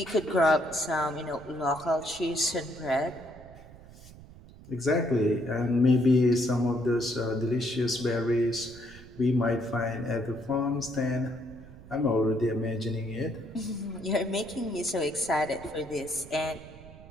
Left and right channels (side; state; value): right; noise; rumble, 19 dB below the sound